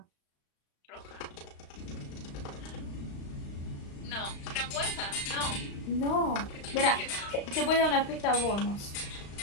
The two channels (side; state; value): right; late; 35 ms